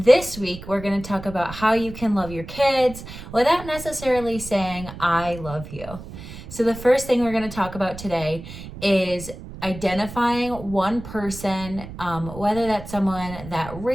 week, we're going to talk about how you can love your kids without necessarily saying, I love you. So the first thing we're going to talk about today is identifying one person, whether that's someone that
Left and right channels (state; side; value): noise; right; rumble, 13 dB below the sound